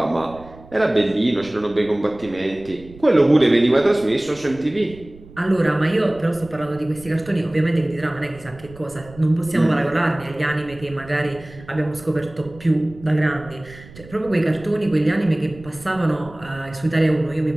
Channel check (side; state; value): right; noise; rumble, 20 dB below the sound